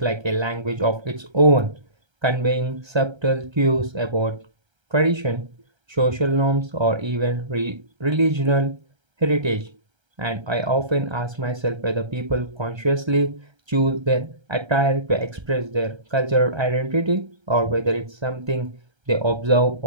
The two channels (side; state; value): left; late; 1.3 ms